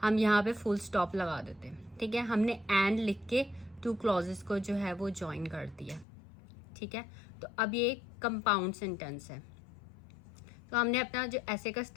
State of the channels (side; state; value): right; drops out; at 6.1 s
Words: हम यहाँ पे full stop लगा देते हैं. ठीक है, हमने and लिख के two clauses को जो है वो join कर दिया. ठीक है, तो अब ये compound sentence है. तो हमने अपना जो ऐसे का